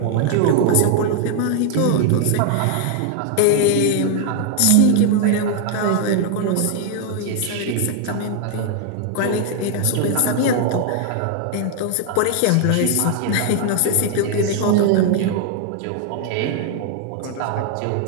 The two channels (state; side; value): different; both; correlation 0.00